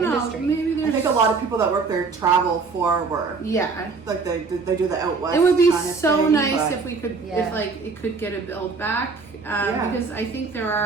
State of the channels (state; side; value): quieter; left; 4.6 dB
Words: know. industry. Maybe there's. I think a lot of people that work there travel for work. Yeah, like they do the out west. It would be kind of so thing, nice if we could, if like it could get a build back, because I think